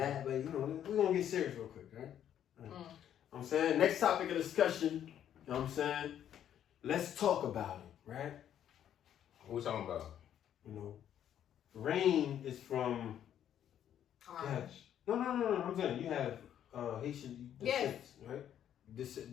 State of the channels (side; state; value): right; quieter; 10.2 dB